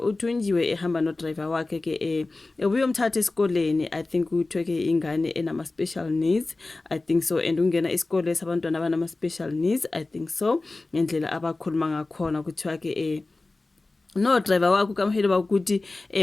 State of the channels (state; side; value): quieter; right; 3.3 dB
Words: ehamba no-driver wakhe ke ubuye umthatha esikoleni. I think kuthiwe ke ingane enama-special needs, I think so, and ungena isikole sabantwana abanama-special needs, I think so, ngendlela abakhuluma ngakhona kuthiwa ke no driver wakho kaMhelo bakuthi